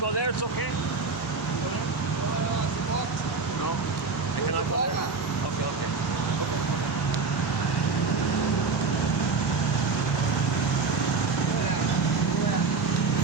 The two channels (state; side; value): quieter; left; 4.5 dB